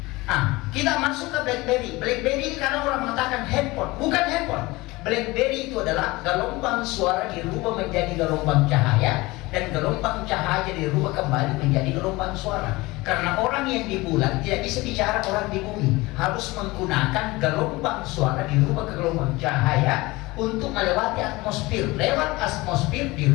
Kita masuk ke BlackBerry. BlackBerry ini karena orang mengatakan handphone, bukan handphone. BlackBerry itu adalah gelombang suara dirubah menjadi gelombang cahaya, dan gelombang cahaya dirubah kembali menjadi gelombang suara. Karena orang yang di bulan tidak bisa bicara orang di bumi, harus menggunakan gelombang suara dirubah ke gelombang cahaya untuk melewati atmosfer. Lewat atmosfer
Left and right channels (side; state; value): right; quieter; 21.5 dB